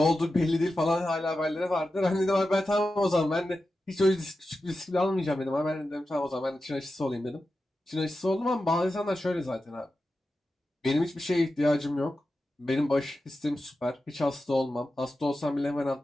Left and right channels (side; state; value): both; normal; correlation 0.91